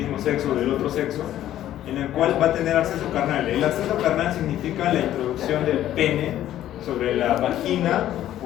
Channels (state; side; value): quieter; right; 12.5 dB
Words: sexo o del otro sexo, en el cual va a tener acceso carnal. El acceso carnal significa la introducción del pene sobre la vagina